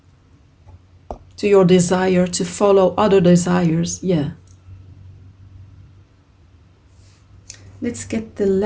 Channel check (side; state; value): both; identical; correlation 1.00